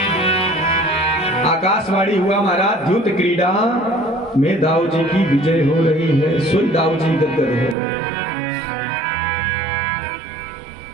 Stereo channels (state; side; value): drops out; left; at 7.8 s